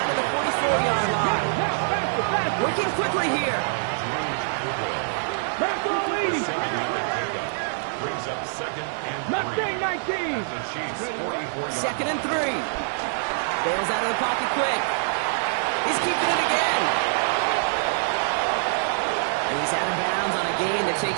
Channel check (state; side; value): silent; left; digital silence